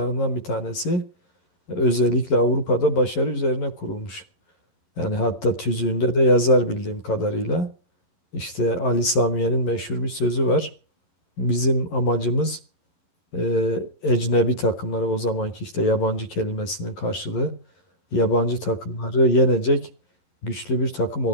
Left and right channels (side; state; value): right; late; 11 ms